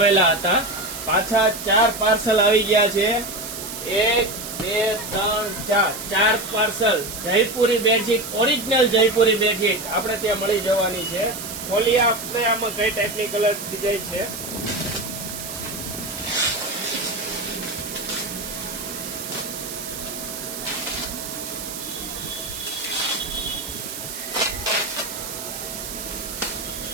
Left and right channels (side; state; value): right; noise; hiss, 8 dB below the sound